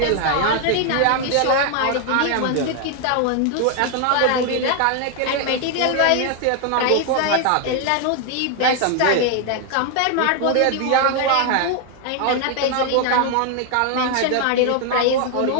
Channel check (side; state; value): both; different; correlation 0.00